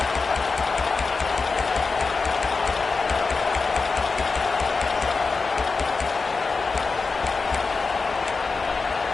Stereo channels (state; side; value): quieter; right; 4.4 dB